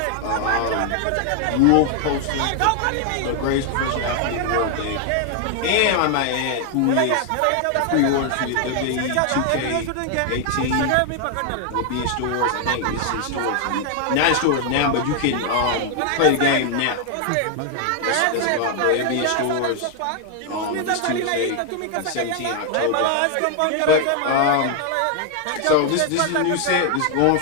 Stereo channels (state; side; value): different; both; correlation 0.00